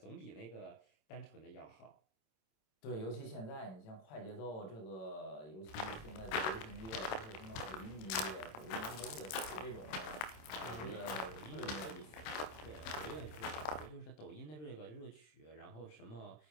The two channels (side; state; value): right; late; 26 ms